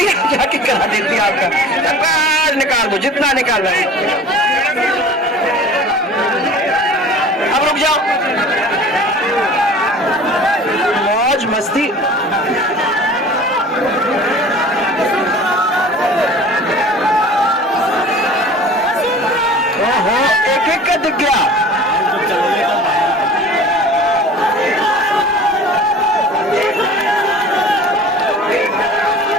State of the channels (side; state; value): both; normal; correlation 0.42